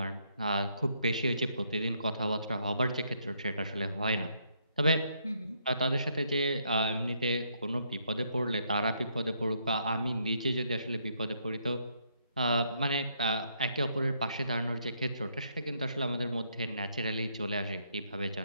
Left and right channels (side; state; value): both; inverted; correlation -0.72